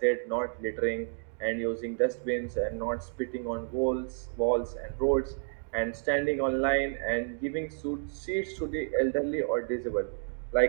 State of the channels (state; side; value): silent; left; 57 dB below the other